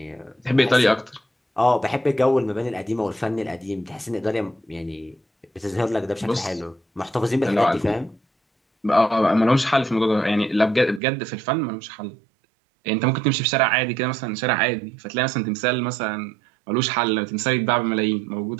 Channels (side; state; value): left; drops out; at 11.0 s